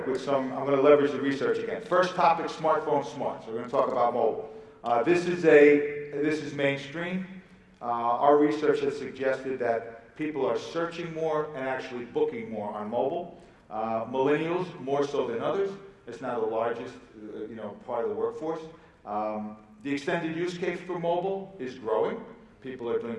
with I'm going to leverage the research again. First topic, smartphone smart. So we're going to talk about mobile. This is mainstream. Our research has suggested that people are searching more and actually booking more on mobile. Millennials more so than others. It's now the largest, part of the workforce. The extended use case for mobile is growing. People are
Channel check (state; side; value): identical; both; correlation 1.00